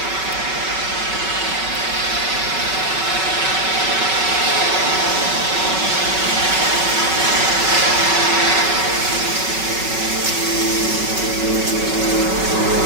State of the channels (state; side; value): late; left; 5.3 ms